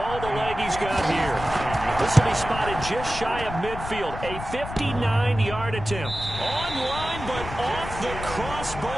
the leg he's got here. This will be spotted just shy of midfield. A 59-yard attempt. On line, but off the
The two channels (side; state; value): left; noise; rumble, 9 dB below the sound